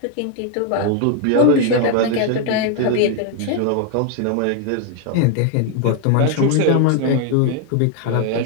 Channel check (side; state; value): both; different; correlation 0.01